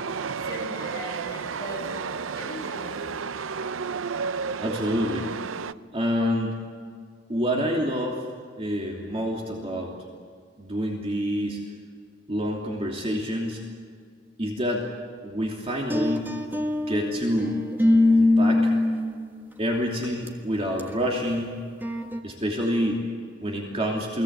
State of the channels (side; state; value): both; normal; correlation 0.69